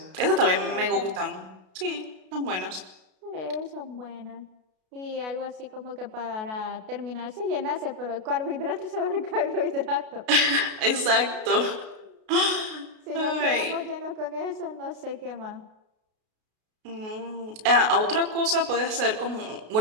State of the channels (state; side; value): late; left; 32 ms